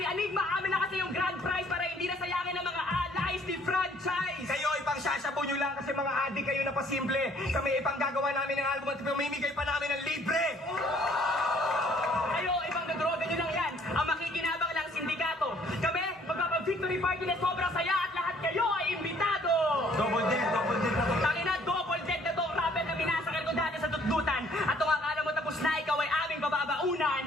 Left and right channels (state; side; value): normal; both; correlation 0.60